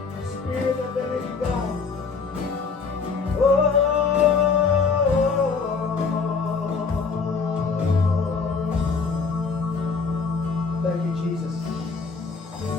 Spirit of the living God. Thank you, Jesus.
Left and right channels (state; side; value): quieter; right; 4.9 dB